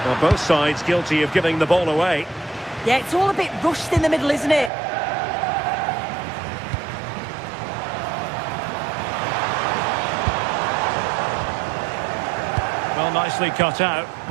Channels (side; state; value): left; drops out; at 4.7 s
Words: Well, both sides guilty of giving the ball away. Yeah, it's all a bit rushed in the middle, isn't it? Well, nicely cut out.